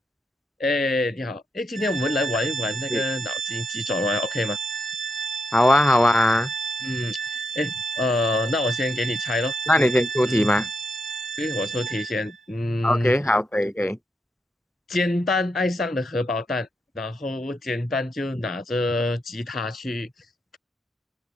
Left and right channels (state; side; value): normal; both; correlation 0.81